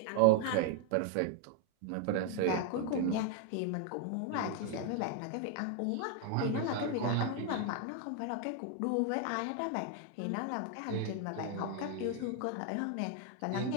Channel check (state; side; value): different; both; correlation 0.00